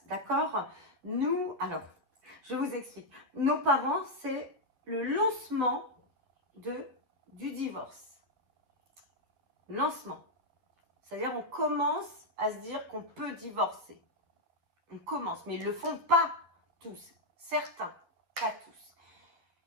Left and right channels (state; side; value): late; left; 12 ms